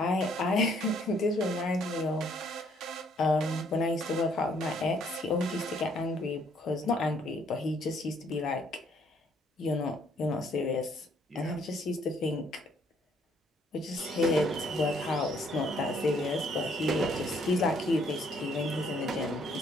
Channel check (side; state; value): both; normal; correlation 0.66